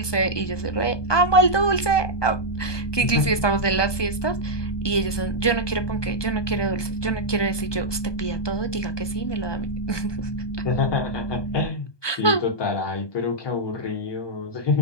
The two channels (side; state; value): right; late; 1.2 ms